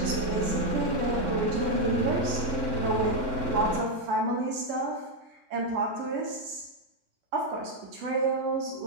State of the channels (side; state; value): left; late; 3.6 ms